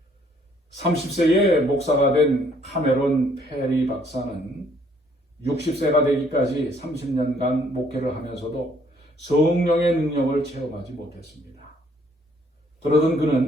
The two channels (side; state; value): both; normal; correlation 0.64